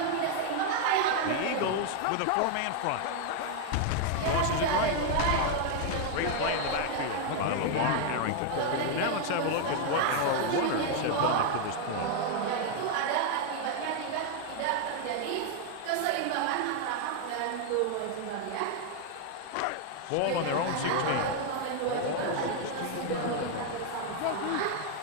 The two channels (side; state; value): both; different; correlation 0.00